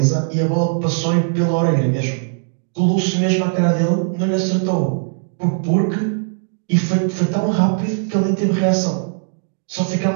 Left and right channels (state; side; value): silent; left; digital silence